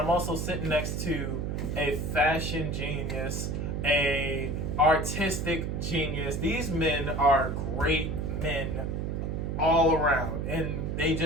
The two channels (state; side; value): noise; right; hum, 2 dB below the sound